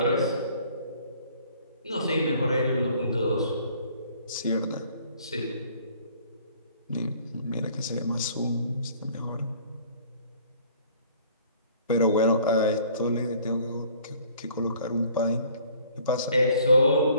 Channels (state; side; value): inverted; both; correlation -0.55